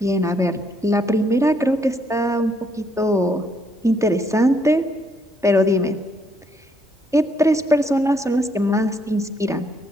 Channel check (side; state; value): both; normal; correlation 0.71